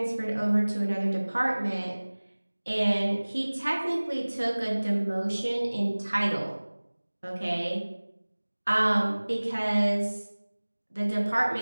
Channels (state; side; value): inverted; both; correlation -1.00